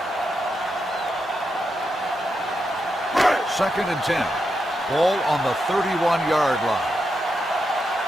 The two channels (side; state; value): both; normal; correlation 0.85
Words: 2nd and 10. Ball on the 31-yard line.